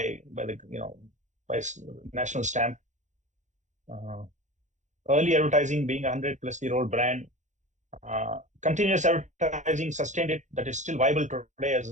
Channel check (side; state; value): left; late; 0.35 ms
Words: national stamp. Early advertising being a 100-plus-year-old brand. Continuous advertising sustained it, that is still viable today